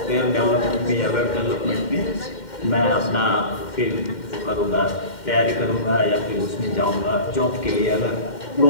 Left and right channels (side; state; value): right; late; 2.1 ms